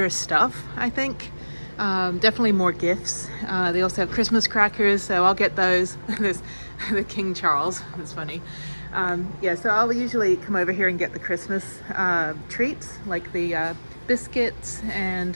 stuff, I think. Definitely more gifts. They also have Christmas crackers, so I'll get those. There's the King Charles, it's funny. Yeah, so I'll usually come over here and get the Christmas treats, like the biscuits and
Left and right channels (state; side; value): inverted; both; correlation -1.00